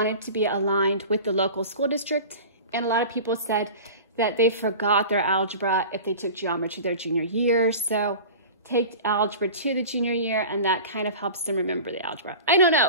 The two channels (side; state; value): both; inverted; correlation -0.36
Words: to be aligned with the local school district. And a lot of people said that they forgot their algebra if they took geometry their junior year. So take algebra to the junior year, and that kind of helps them remember the algebra. I don't know.